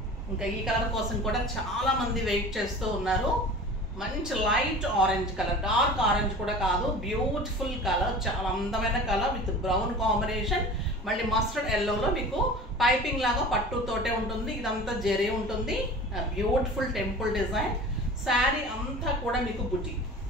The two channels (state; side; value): normal; both; correlation 0.38